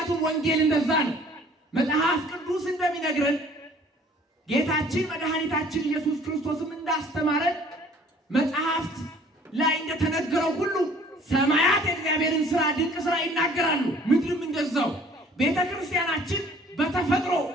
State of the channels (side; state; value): both; normal; correlation 0.53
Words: ወንጌል እንደዛ ነው። መጽሐፍ ቅዱስ እንደሚነግረን ጌታችን መድኃኒታችን ኢየሱስ ክርስቶስም እንዳስተማረን መጽሐፍት ላይ እንደተነገረው ሁሉ ሰማያት የእግዚአብሔርን ስራ ድንቅ ስራ ይናገራሉ፣ ምድርም እንደዛው። ቤተ ክርስቲያናችን በተፈጥሮ